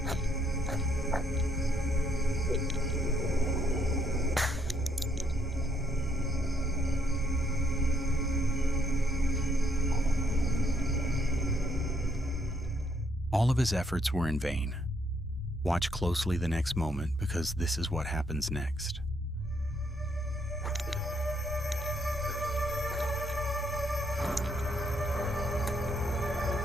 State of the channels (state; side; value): normal; both; correlation 0.71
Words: All of his efforts were in vain. Watch closely the next moment, because this is what happens next.